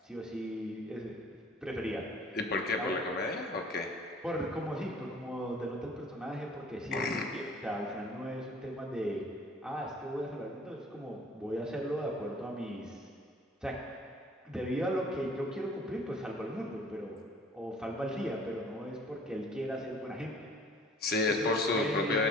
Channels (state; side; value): normal; both; correlation 0.52